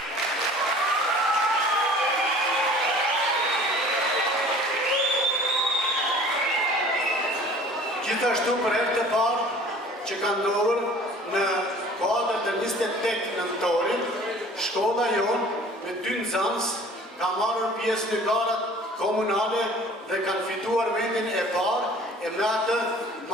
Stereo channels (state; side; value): normal; both; correlation 0.48